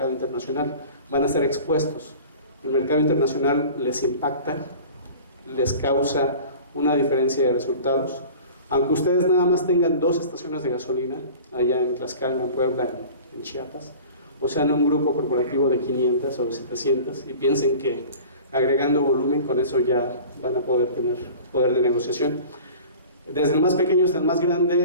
internacional. Van a ser expuestos. El mercado internacional les impacta, les causa una diferencia de resultados. Aunque ustedes nada más tengan 2 estaciones de gasolina, allá en Tlaxcala, en Puebla, en Chiapas, o sea, en un grupo corporativo de 500 o de 700, y piensen que agregando volumen con eso ya van a poder tener poder de negociación. Desde el más pequeño hasta el más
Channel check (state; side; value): inverted; both; correlation -0.41